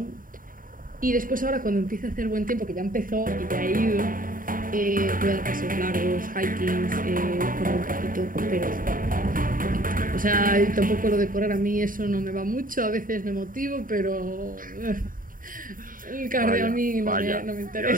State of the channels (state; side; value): late; left; 0.40 ms